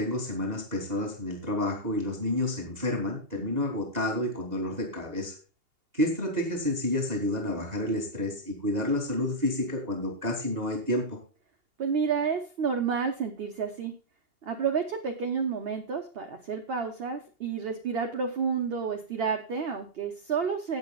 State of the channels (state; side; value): late; left; 2.8 ms